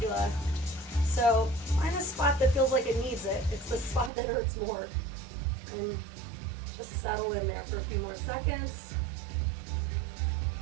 So find a spot that feels like it needs it. It's the spot that hurts more. And just settle in there for a few more seconds.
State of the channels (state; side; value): drops out; left; at 4.1 s